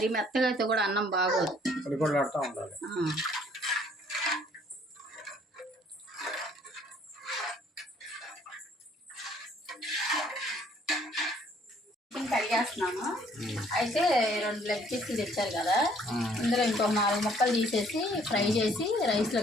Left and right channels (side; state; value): both; normal; correlation 0.61